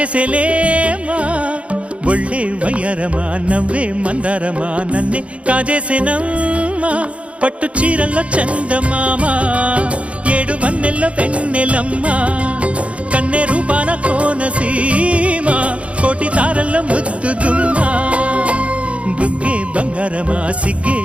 ಒಳ್ಳೆ వయ్యారమ నవ్వే మందారమ నన్నే కాజేసేనమ్మ పట్టు చీరల్లో చందమామ ఏడు వన్నెల్లో వెన్నెలమ్మ కన్నె రూపాన కోనసీమ కోటి తారల్లో ముద్దు దుమ్మ బుగ్గే బంగారమ సిగ్గే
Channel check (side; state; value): left; late; 0.062 ms